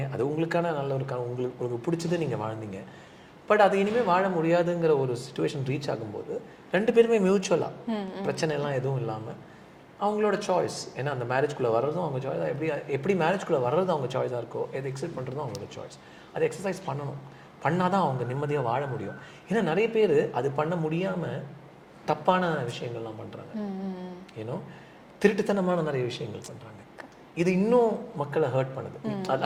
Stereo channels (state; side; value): identical; both; correlation 1.00